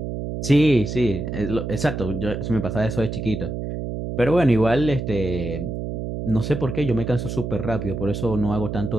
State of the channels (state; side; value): noise; right; hum, 5 dB below the sound